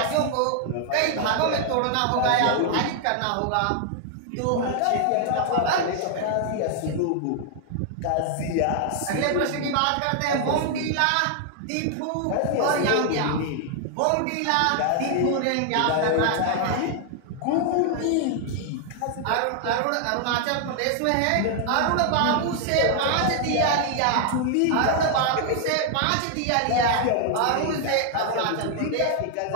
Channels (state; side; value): different; both; correlation 0.00